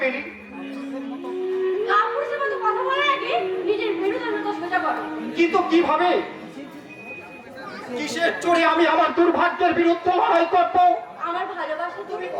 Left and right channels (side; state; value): both; identical; correlation 1.00